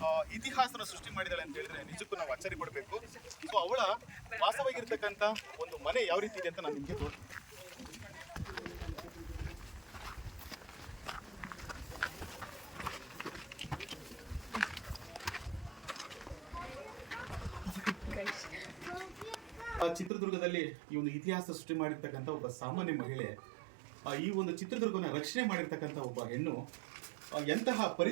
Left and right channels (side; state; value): left; drops out; at 20.1 s